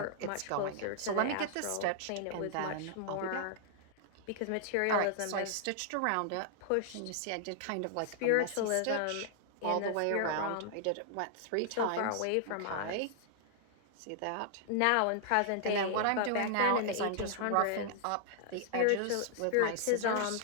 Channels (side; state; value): both; different; correlation -0.01